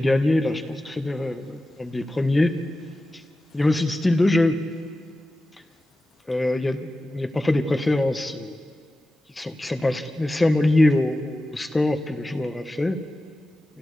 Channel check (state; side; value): normal; both; correlation 0.94